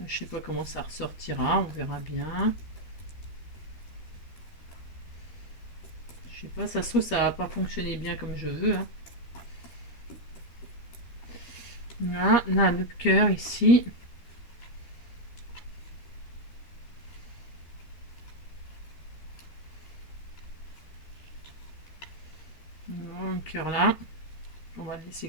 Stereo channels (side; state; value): right; late; 13 ms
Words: Je sais pas comment ça ressortira, on verra bien. Je sais pas, ça se trouve ça va pas fonctionner bien comme je veux. Hein. Là, le cœur ici. Le cœur là. On va le